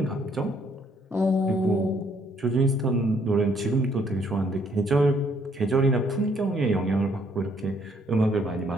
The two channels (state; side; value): normal; both; correlation 0.67